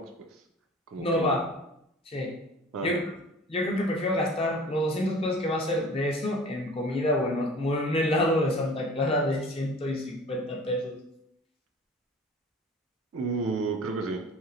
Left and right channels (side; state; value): both; normal; correlation 0.44